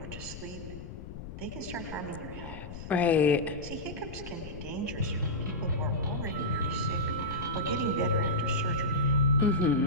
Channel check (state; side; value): noise; left; rumble, 11 dB below the sound